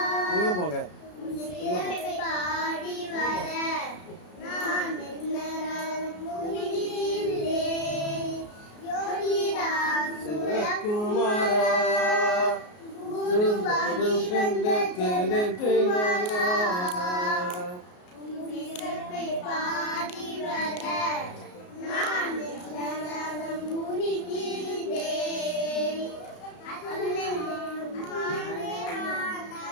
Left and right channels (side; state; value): right; late; 33 ms